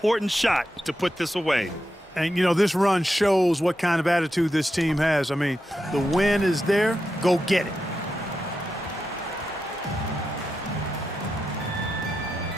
shot to put this away. And, you know, this run shows what kind of attitude this team has. I mean, the win is there. Go get it.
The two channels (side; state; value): both; normal; correlation 0.87